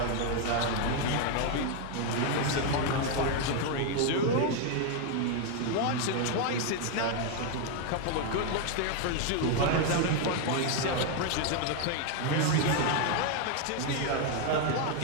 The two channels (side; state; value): both; different; correlation 0.01